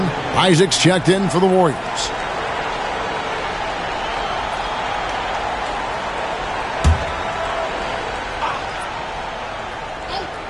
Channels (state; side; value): identical; both; correlation 1.00